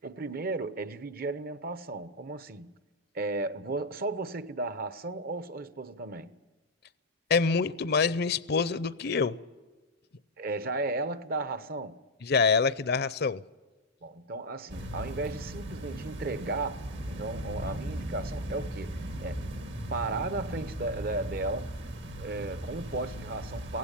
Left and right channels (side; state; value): both; normal; correlation 0.02